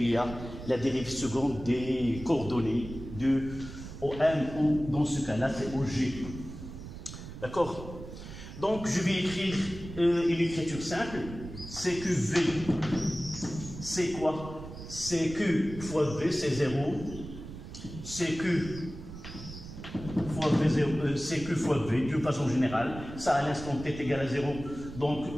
y a la dérive seconde des coordonnées de au M ou dans ce cas-là, c'est au G. D'accord? Donc, je vais écrire une écriture simple. C'est que V, c'est quoi? C'est que fois V, c'est 0. C'est que fois V, 0, c'est que fois V, de façon générale. Ça, à l'instant t est égal à 0.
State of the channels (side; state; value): right; noise; rumble, 12 dB below the sound